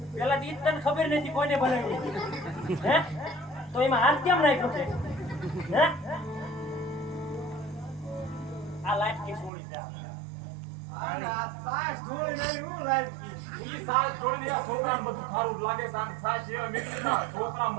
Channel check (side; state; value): left; drops out; at 9.5 s